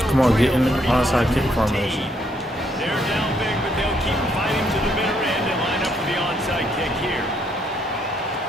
Come on, get in the trail onside kick 31-14. formation. They're down big, but they'll keep fighting to the bitter end and line up for the onside kick here.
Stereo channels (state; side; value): normal; both; correlation 0.72